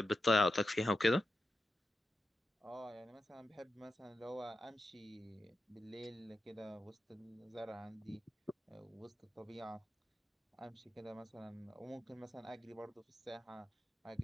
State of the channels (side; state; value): both; normal; correlation 0.89